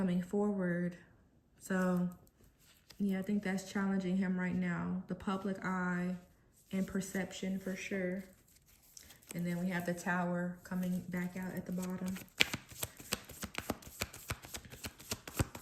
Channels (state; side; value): identical; both; correlation 1.00